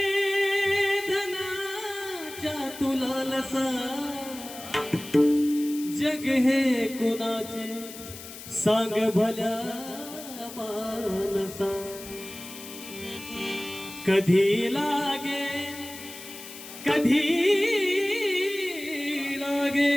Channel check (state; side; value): noise; left; hiss, 14 dB below the sound